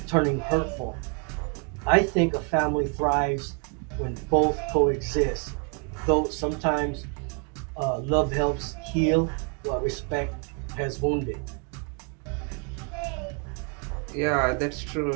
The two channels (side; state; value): left; quieter; 37.6 dB